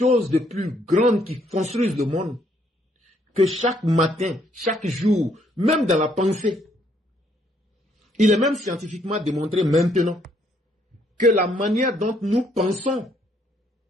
de plus grand qui construise le monde que chaque matin, chaque jour, même dans la pensée. Il est même scientifiquement démontré maintenant que la manière dont nous pensons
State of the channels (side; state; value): both; normal; correlation 0.69